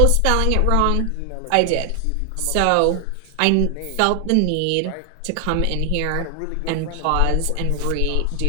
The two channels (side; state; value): both; different; correlation 0.00